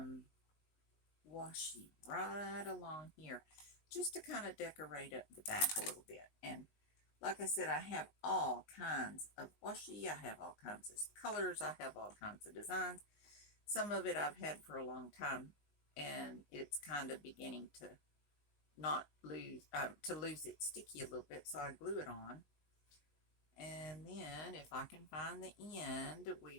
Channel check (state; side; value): late; right; 19 ms